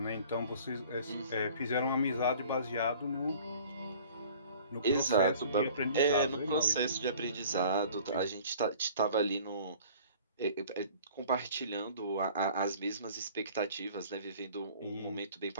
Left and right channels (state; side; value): inverted; both; correlation -0.48